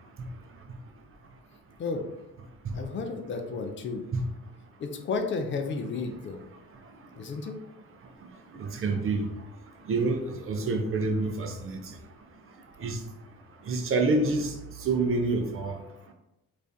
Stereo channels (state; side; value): normal; both; correlation 0.38